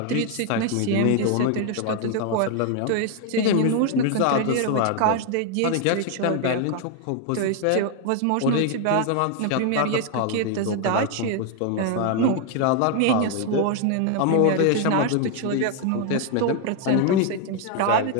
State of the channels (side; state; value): both; different; correlation 0.00